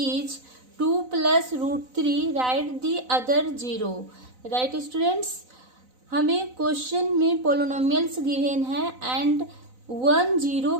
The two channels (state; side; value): late; left; 4.0 ms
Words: 2 plus root 3, write the other 0. Right students, हमें question में polynomials given है and 1 0